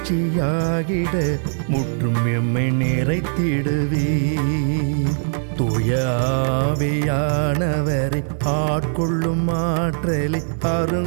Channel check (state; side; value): silent; left; digital silence